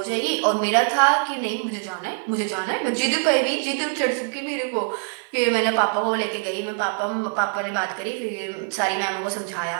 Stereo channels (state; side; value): silent; left; 63 dB below the other